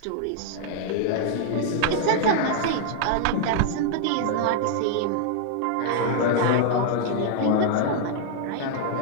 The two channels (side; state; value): both; different; correlation 0.00